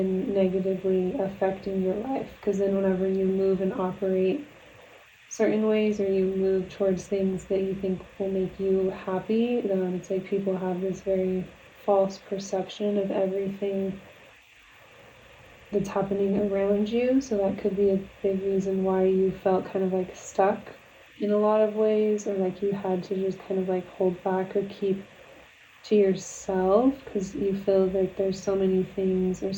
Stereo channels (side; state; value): both; identical; correlation 1.00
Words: negatively affecting your life. Because then whenever you move and operate certain ways or you move towards things that you think will make you happy, it's like people have this very false perception of everything that's happening around you. So that could be a big reason why you felt kind of like stuck in a lot of ways, or like you had to just kind of like hold back or keep to yourself, because you feel like there's so many things or